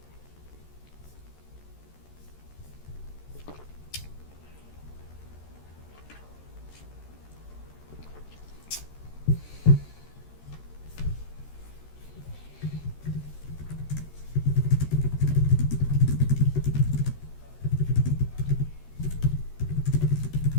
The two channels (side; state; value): right; late; 13 ms